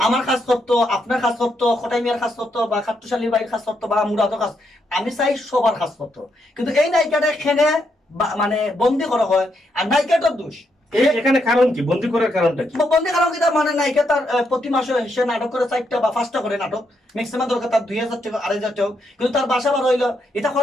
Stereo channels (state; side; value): normal; both; correlation 0.79